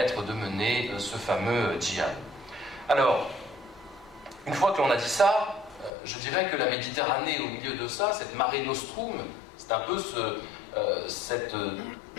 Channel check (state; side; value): drops out; right; at 5.9 s